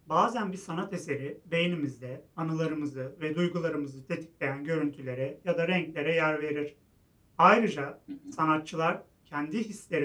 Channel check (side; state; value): both; identical; correlation 1.00